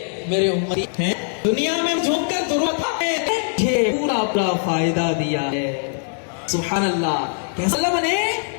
میرے امتی ہیں، دنیا میں جھوک کر ضرورت ہے، پورا اپنا فائدہ دیا ہے۔ سبحان اللہ، کیسا اللہ بنے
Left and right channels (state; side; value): silent; right; 59 dB below the other